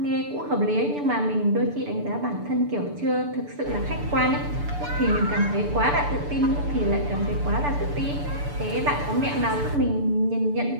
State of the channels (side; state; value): left; late; 6.9 ms